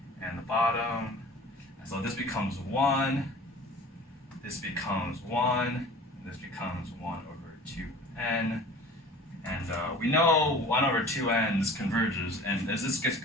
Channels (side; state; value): both; normal; correlation 0.43